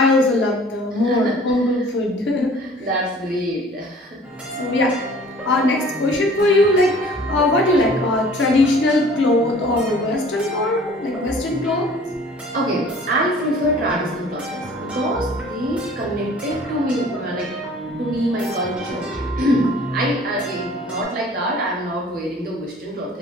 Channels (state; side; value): normal; both; correlation 0.50